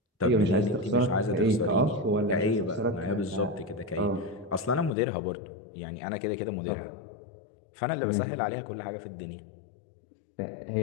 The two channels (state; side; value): drops out; right; at 4.9 s